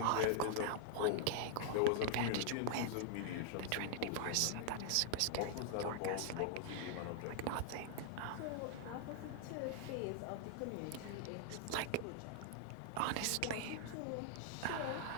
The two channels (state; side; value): different; both; correlation -0.01